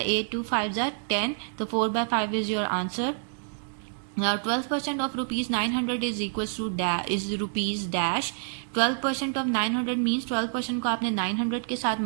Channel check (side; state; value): left; silent; digital silence